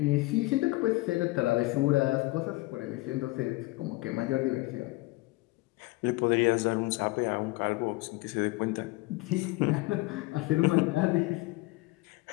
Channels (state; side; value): quieter; right; 21.6 dB